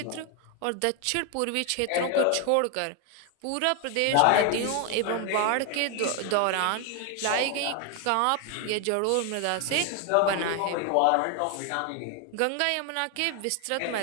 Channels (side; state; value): both; different; correlation 0.01